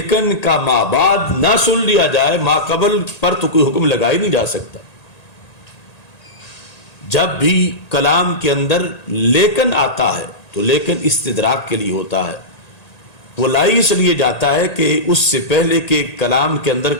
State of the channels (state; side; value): late; right; 1.8 ms